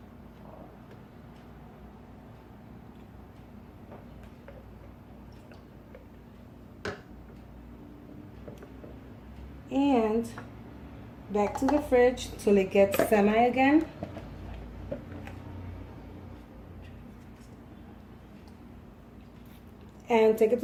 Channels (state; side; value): identical; both; correlation 1.00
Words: And back to the fridge till it gets semi again. And take it